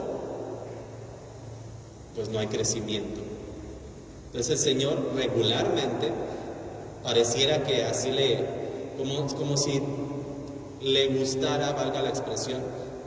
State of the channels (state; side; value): identical; both; correlation 1.00